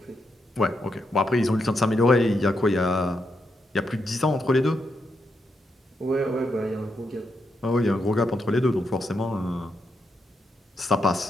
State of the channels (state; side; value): normal; both; correlation 0.82